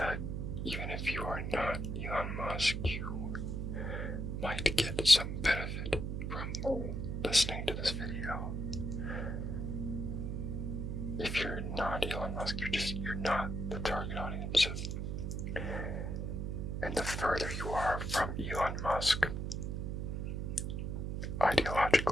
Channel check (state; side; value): noise; right; hum, 2 dB below the sound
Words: even if you are not Elon Musk, you might get some benefit from listening to this video. If you're not Elon Musk, you're not the target audience. And the further you are from Elon Musk,